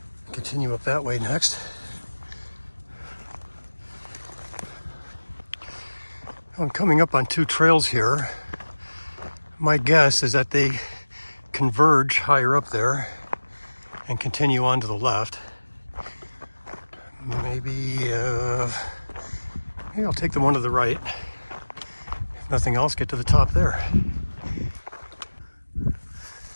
Continue up that way next. I'm coming up on two trails here. My guess is that they converge higher up there and continue on to the left. Maybe I'll take the one to the right. If nothing else, get to the top there.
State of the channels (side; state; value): both; inverted; correlation -1.00